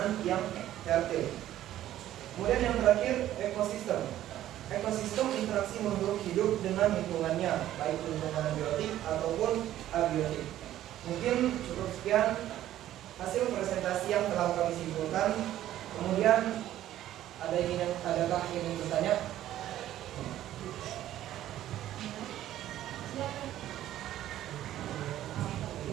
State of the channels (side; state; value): left; quieter; 12.9 dB